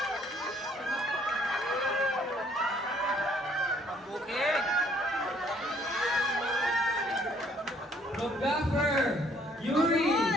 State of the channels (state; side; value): normal; both; correlation 0.63